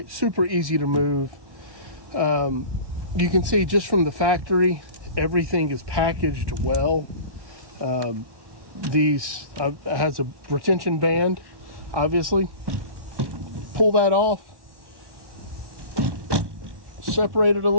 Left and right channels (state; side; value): late; left; 1.1 ms